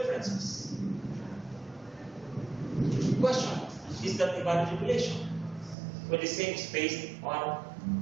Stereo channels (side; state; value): left; drops out; at 5.8 s